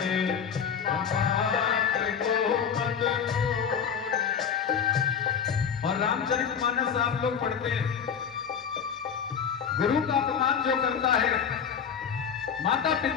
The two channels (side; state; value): right; quieter; 7.4 dB